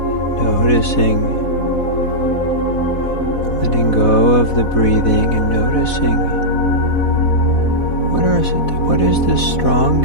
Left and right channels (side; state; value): right; late; 4.1 ms